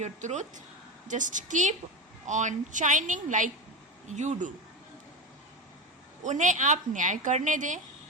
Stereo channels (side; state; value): both; normal; correlation 0.19